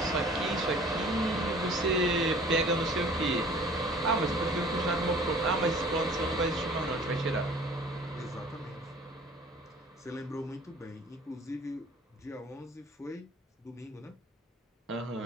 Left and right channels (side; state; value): both; normal; correlation 0.49